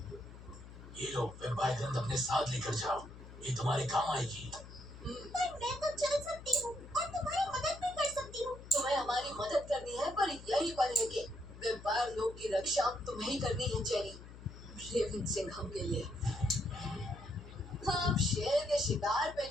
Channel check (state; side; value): noise; left; hum, 15 dB below the sound